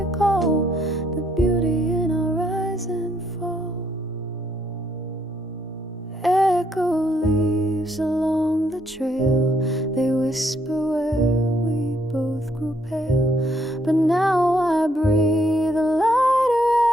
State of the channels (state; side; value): normal; both; correlation 0.71